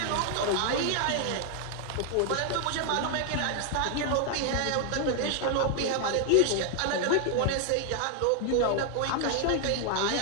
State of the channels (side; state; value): both; different; correlation 0.00